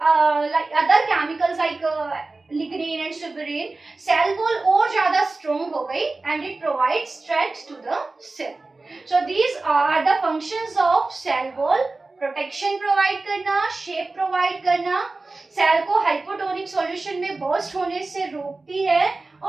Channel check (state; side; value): quieter; left; 3.4 dB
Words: like other chemicals like lignin and suberin, cell wall और ज्यादा स्ट्रॉन्ग हो गई and it provide strength to the cell. So these are the functions of cell wall: protection provide करना, shape provide करना, cell को hypotonic solution में burst होने से रोकती है